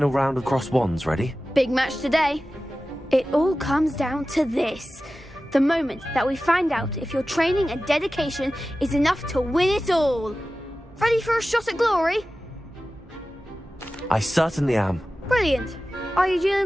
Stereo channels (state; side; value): normal; both; correlation 0.95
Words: round of crossed wands ready? Big match today. It all comes down to this. The moment that we find out if your training and dedication is enough to win it all. Ready for a shot at glory? I certainly am. Brilliant. Are you